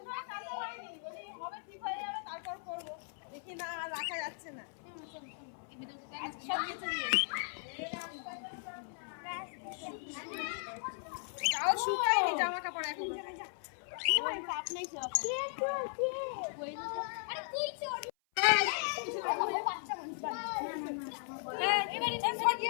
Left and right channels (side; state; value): right; silent; 53 dB below the other